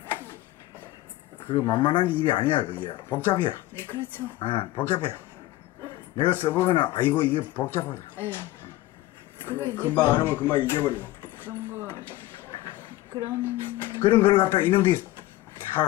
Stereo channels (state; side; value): quieter; right; 17.0 dB